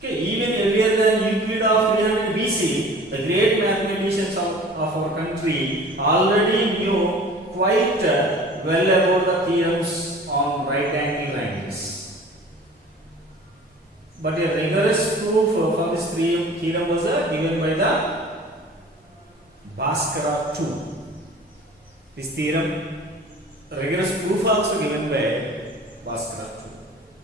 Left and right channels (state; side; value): normal; both; correlation 0.44